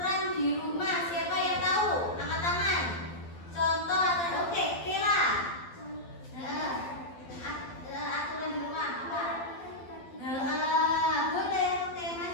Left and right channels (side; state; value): right; late; 12 ms